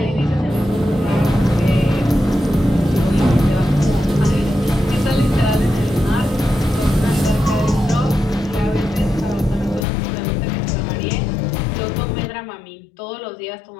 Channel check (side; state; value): right; drops out; at 9.9 s